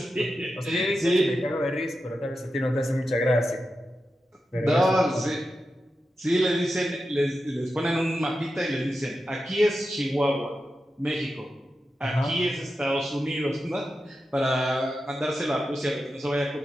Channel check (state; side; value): normal; both; correlation 0.90